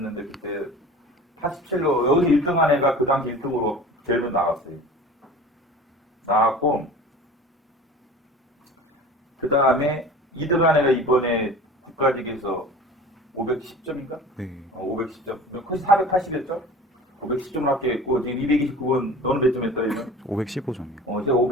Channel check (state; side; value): normal; both; correlation 0.39